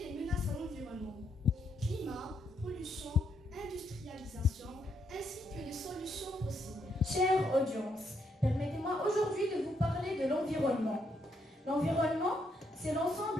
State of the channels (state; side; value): normal; both; correlation 0.76